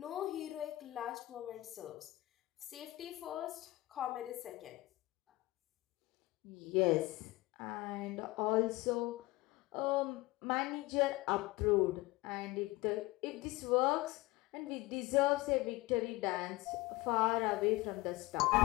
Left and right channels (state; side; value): quieter; right; 20.1 dB